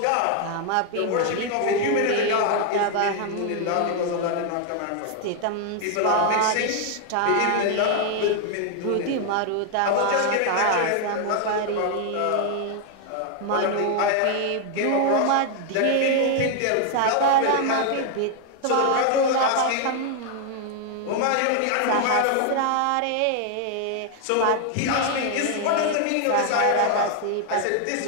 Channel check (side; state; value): both; different; correlation 0.00